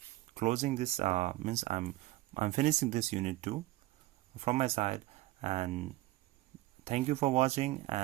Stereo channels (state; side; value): quieter; left; 17.7 dB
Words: closing this, means I'm finishing this unit 2 from my side, and thank you for watching